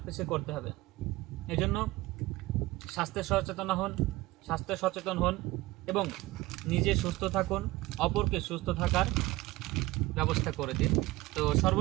পিছিয়ে করতে হবে। এই জন্য স্বাস্থ্য সচেতন হন এবং নিজে সুস্থ থাকুন, অপরকে সুস্থ থাকার ব্যবস্থা করে দিন। তো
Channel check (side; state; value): left; quieter; 19.4 dB